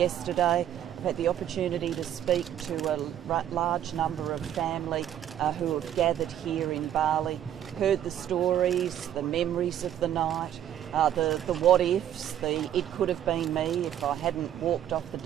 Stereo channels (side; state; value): left; quieter; 10.8 dB